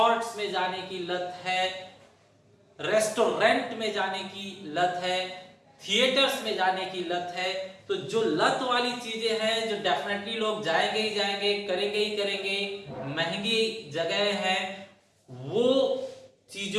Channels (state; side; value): identical; both; correlation 1.00